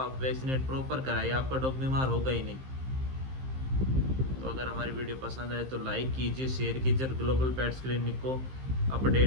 आप वैक्सीनेट प्रॉपर कराइए, आपका डॉग बीमार होगा ही नहीं। तो अगर हमारी वीडियो पसंद आए तो लाइक कीजिए, शेयर कीजिए, और ग्लोबल पेट्स क्लिनिक को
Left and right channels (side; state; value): left; late; 15 ms